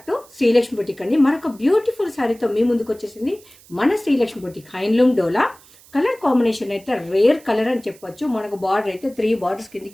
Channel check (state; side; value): noise; right; hiss, 25 dB below the sound